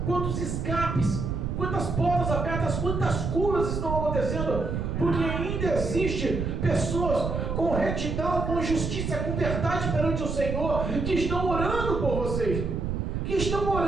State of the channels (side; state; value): right; noise; rumble, 2 dB below the sound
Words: Quantos escapes, quantas portas abertas, quantas curas estão acontecendo? Porque ainda existe pessoas com retidão, com justiça, com verdade perante o Senhor, que estão orando por vocês, que estão